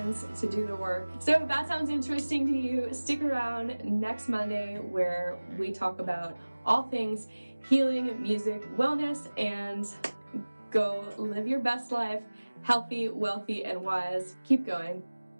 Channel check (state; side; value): inverted; both; correlation -1.00